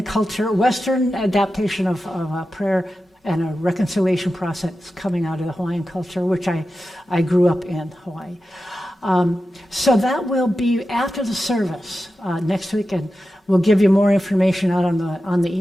culture, Western adaptation of prayer and a reconciliation process coming out of the Hawaiian culture, which I grew up in Hawaii. So that will be after the service next week, and we'll give you more information out on the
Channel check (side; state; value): both; normal; correlation 0.92